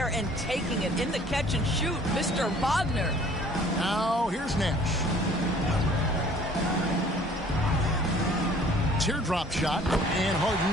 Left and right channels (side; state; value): both; normal; correlation 0.54